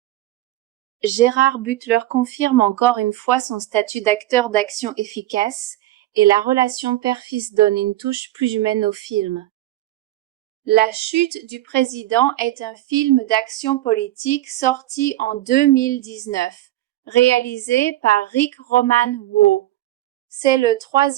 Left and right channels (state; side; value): quieter; left; 15.3 dB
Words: Gerard Butler confirme encore une fois son statut d'acteur d'action efficace, et la relation père-fils donne une touche plus humaine au film. La chute du président est un film d'action politique sorti en 2019, réalisé par Rick Roman Waugh. C'est le